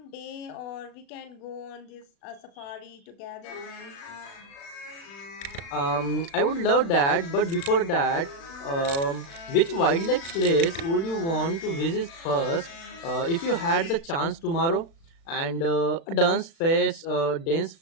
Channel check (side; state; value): right; late; 36 ms